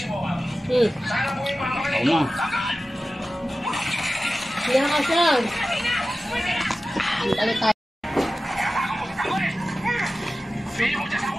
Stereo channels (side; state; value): both; normal; correlation 0.95